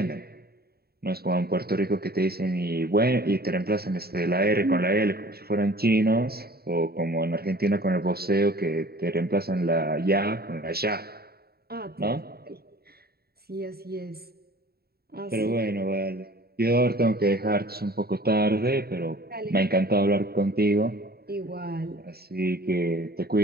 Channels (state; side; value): late; left; 0.45 ms